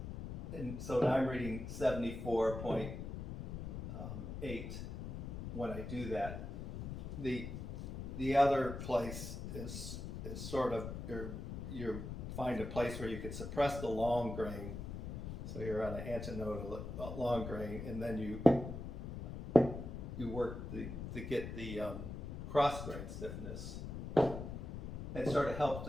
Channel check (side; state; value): left; noise; rumble, 7 dB below the sound